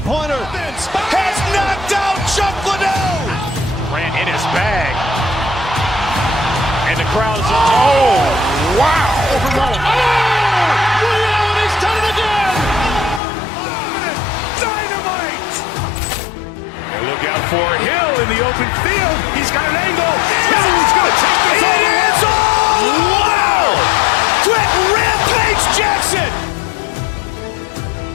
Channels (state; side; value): drops out; right; at 13.2 s